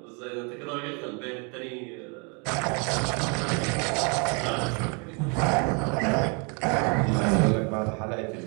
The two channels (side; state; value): left; quieter; 34.5 dB